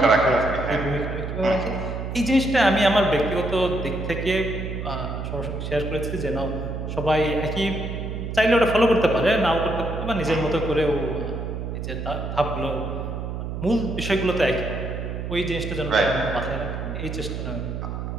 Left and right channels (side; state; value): right; noise; hum, 5 dB below the sound